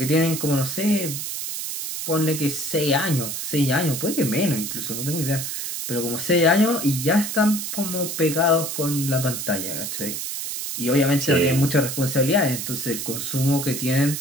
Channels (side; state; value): right; noise; hiss, 5 dB below the sound